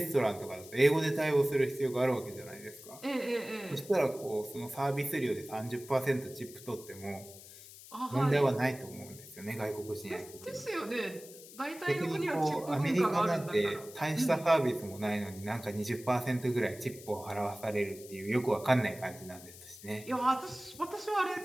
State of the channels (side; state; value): left; noise; hiss, 17 dB below the sound